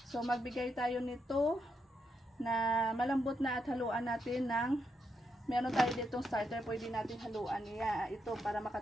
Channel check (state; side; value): normal; both; correlation 0.81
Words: So, magbigay tayo nito na malambot na at haluan natin ng, meron tayo ditong starter, pwede natin haluan ito para